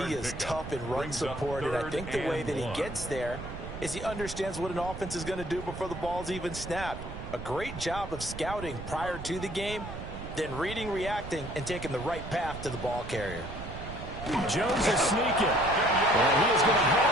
he is tough in run support, and I think the way that he gets there is he understands what an offense is going to do before the ball's even snapped. A great job of scouting prior to the game, then reading, reacting, and taking the right path to the ball carrier. Jones is sneaking. And he is going to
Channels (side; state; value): right; noise; rumble, 9 dB below the sound